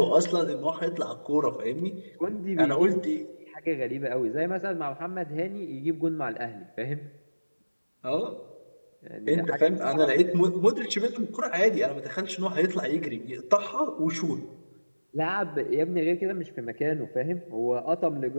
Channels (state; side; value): inverted; both; correlation -1.00